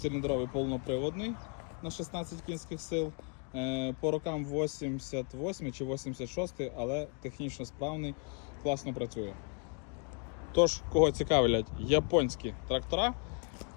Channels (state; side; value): quieter; right; 38.4 dB